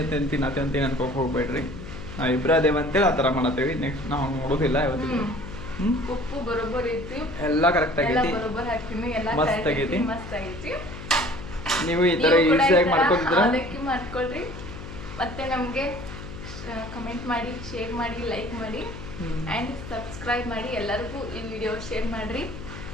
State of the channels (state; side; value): noise; left; hum, 11 dB below the sound